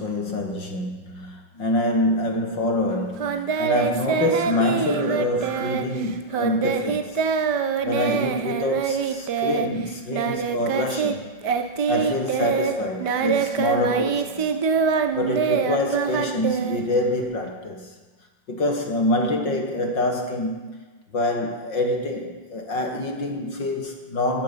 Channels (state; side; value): late; right; 5.1 ms